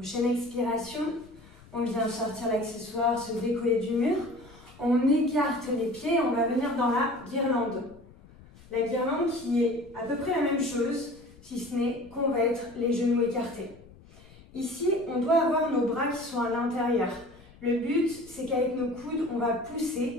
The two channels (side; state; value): left; noise; rumble, 23 dB below the sound